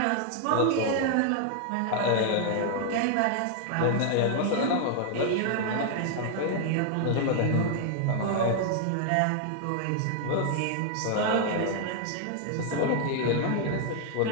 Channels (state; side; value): different; both; correlation 0.00